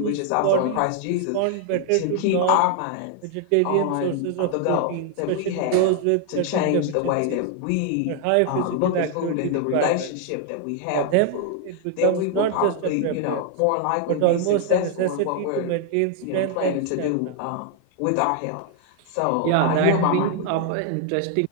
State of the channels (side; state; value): both; different; correlation 0.00